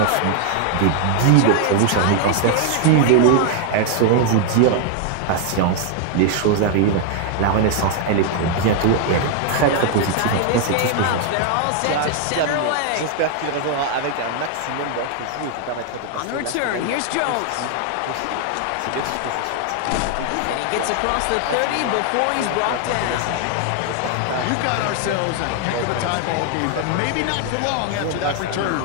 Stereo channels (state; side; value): different; both; correlation 0.00